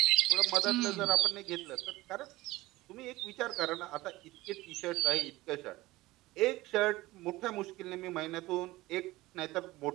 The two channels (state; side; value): quieter; left; 18.8 dB